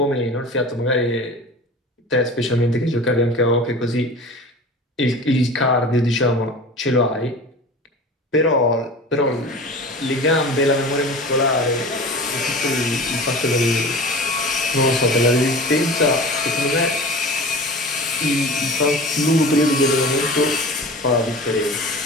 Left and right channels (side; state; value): both; normal; correlation 0.37